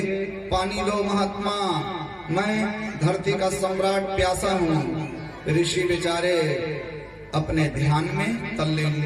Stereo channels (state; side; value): identical; both; correlation 1.00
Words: पानी दो महात्मा, मैं धरती का सम्राट प्यासा हूँ। ऋषि बेचारे अपने ध्यान में तल्लीन